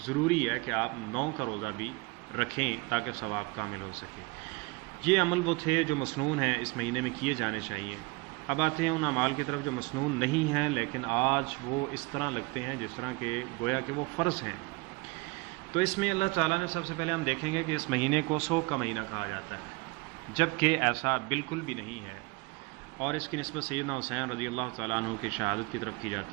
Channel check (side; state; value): left; quieter; 25.5 dB